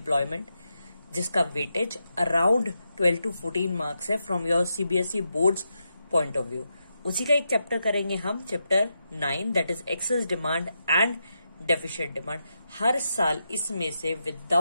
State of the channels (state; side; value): inverted; both; correlation -0.85